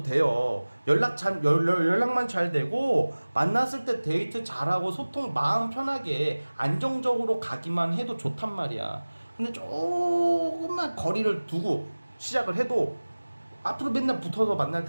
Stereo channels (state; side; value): inverted; both; correlation -1.00